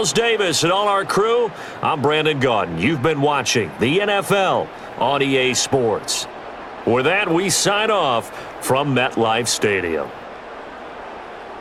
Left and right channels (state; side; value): identical; both; correlation 1.00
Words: Davis and all our crew, I'm Brandon Gaudin. You've been watching the NFL on EA Sports. With that, we sign off from MetLife Stadium.